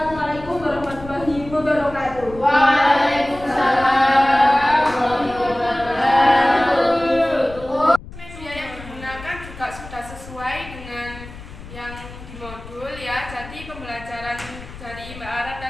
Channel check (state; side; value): noise; left; rumble, 15 dB below the sound